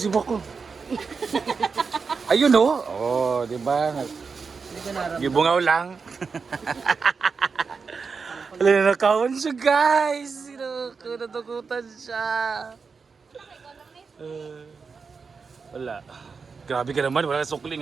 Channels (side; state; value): left; quieter; 5.1 dB